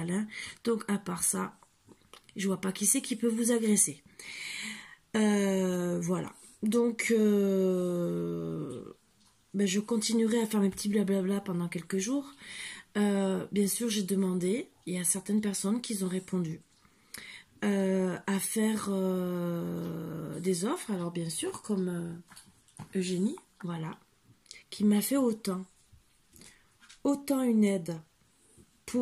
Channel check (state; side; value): identical; both; correlation 1.00